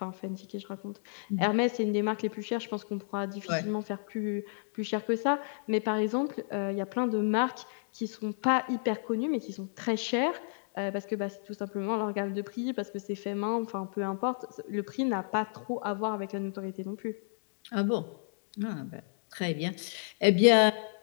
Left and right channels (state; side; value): silent; right; digital silence